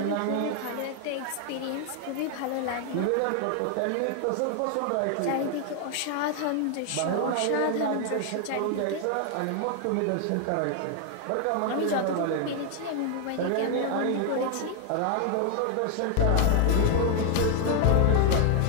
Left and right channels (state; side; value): different; both; correlation 0.00